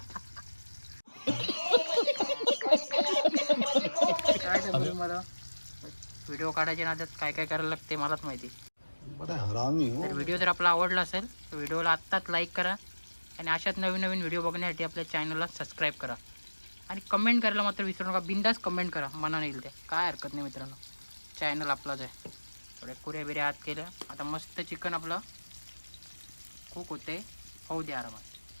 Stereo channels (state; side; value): inverted; both; correlation -1.00